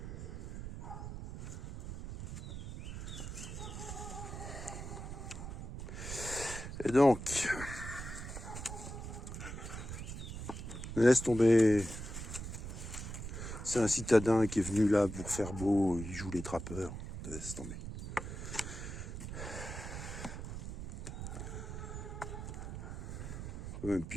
Et donc, laisse tomber. C'est un citadin qui est venu là pour faire beau, il joue les trappeurs. Laisse tomber. On peut même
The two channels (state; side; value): noise; right; rumble, 7 dB below the sound